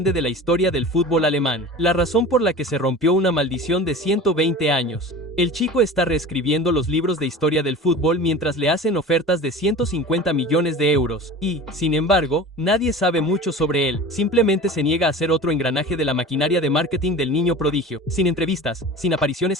de la historia del fútbol alemán. La razón por la que se rompió una maldición de 120 años. El chico está reescribiendo los libros de historia del fútbol mientras le hacen ofertas de 150 millones de euros. Y, sin embargo, nadie sabe mucho sobre él. Simplemente se niega a ser otro engranaje de la maquinaria de marketing del niño prodigio. Sin entrevistas, sin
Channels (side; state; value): both; normal; correlation 0.36